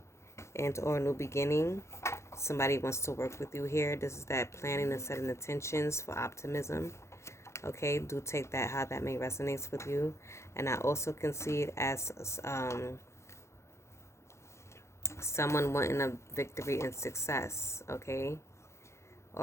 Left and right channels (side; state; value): right; late; 0.13 ms